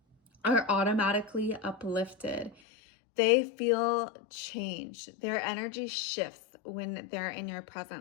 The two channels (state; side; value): drops out; right; at 2.6 s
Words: are automatically uplifted. They feel change. Their energy shifts when they're in your